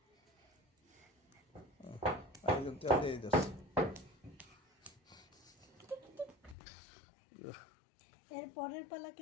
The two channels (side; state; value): right; drops out; at 6.6 s